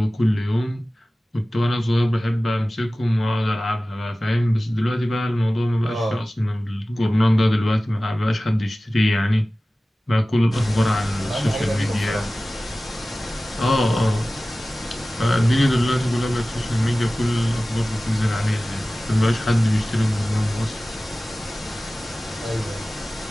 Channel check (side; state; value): both; normal; correlation 0.97